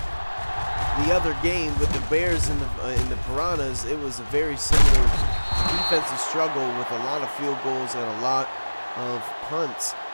the other game with the Bears and the Piranhas, it was a very similar defensive struggle with a lot of field goals and a lot of punts.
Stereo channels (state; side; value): inverted; both; correlation -1.00